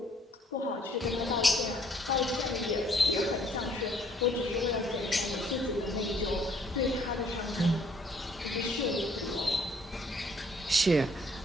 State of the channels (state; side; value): normal; both; correlation 0.63